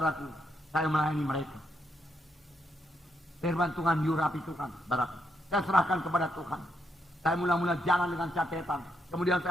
saya melayani mereka. Firman Tuhan diurapi Tuhan, saudaraku. Saya serahkan kepada Tuhan. Saya mula-mula jalan dengan catatan. Kemudian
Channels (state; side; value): normal; both; correlation 0.79